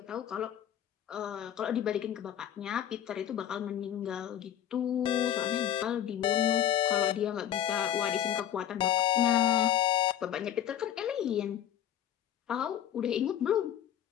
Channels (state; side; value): quieter; right; 10.7 dB